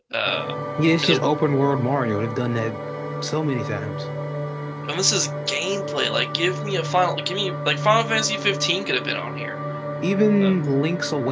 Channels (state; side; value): identical; both; correlation 1.00